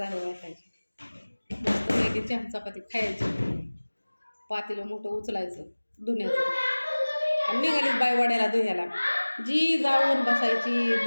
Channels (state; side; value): inverted; both; correlation -1.00